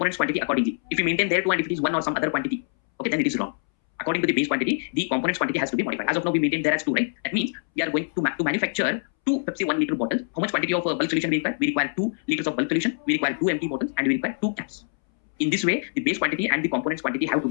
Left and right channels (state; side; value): silent; right; 62 dB below the other